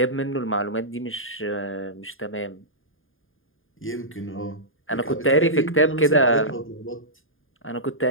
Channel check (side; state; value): right; late; 0.59 ms